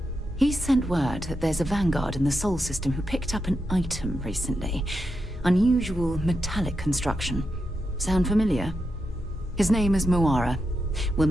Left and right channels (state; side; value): normal; both; correlation 0.86